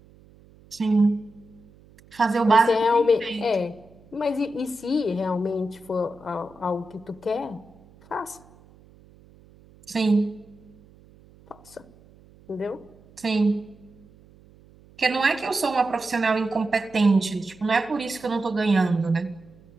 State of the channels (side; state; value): right; noise; hum, 26 dB below the sound